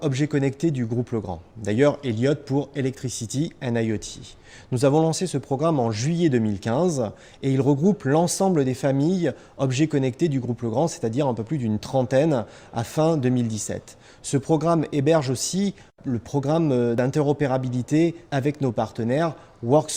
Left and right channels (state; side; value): identical; both; correlation 1.00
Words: Objets connectés du groupe Legrand. D'ailleurs, Elliott pour Electricity and IoT. Nous avons lancé ce programme en juillet 2015 et il regroupe l'ensemble des familles objets connectés du groupe Legrand, c'est-à-dire un peu plus d'une trentaine à fin 2017. Ce programme héberge aussi le programme d'interopérabilité avec nos partenaires